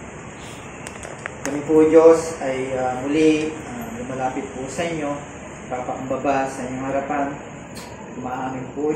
Kami po, Diyos, ay muli lumalapit po sa inyo, papakumbaba sa inyong harapan. Umaamin po,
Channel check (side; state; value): both; identical; correlation 1.00